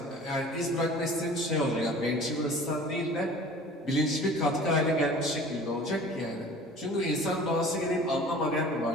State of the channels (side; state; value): both; normal; correlation 0.45